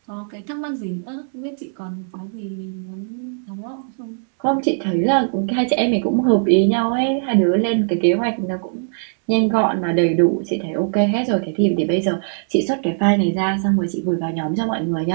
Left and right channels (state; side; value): silent; left; digital silence